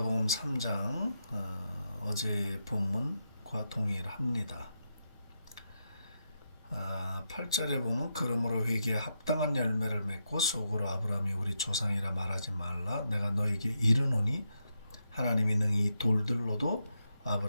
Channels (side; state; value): both; inverted; correlation -0.84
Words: 3장 어제의 본문과 동일합니다. 8절에 보면 그러므로 회개에 합당한 열매를 맺고 속으로 아브라함이 우리 조상이라 말하지 말라. 내가 너에게 이르노니 하나님이 능히 돌들로도